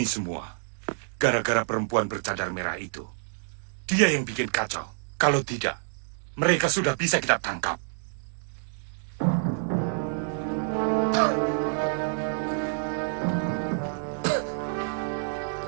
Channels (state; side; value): silent; left; digital silence